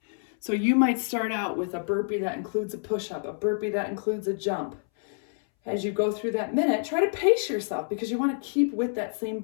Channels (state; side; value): silent; right; 60 dB below the other